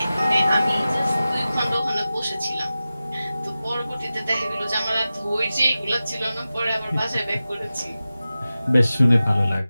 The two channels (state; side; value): inverted; both; correlation -0.94